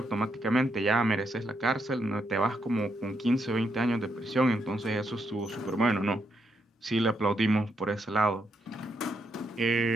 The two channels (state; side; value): normal; both; correlation 0.79